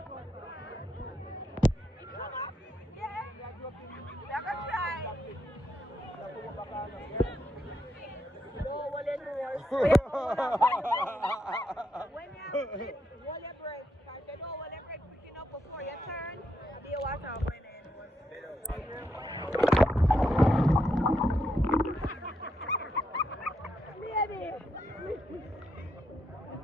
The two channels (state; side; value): normal; both; correlation 0.80